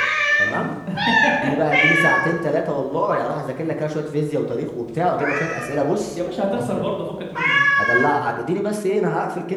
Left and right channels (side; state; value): both; identical; correlation 1.00